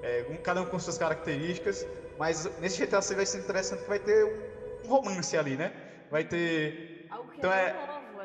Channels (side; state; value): both; identical; correlation 1.00